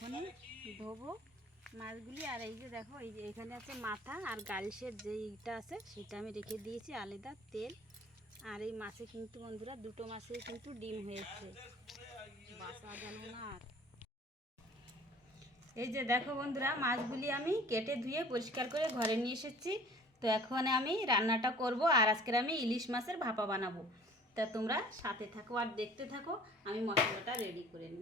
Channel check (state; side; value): normal; both; correlation 0.49